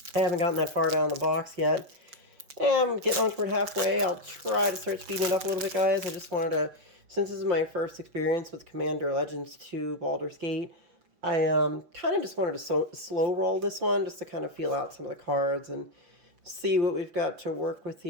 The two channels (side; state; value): left; late; 6.0 ms